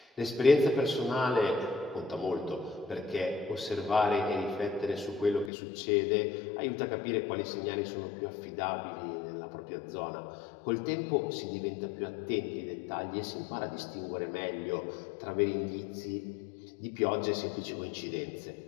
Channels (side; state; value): right; drops out; at 5.5 s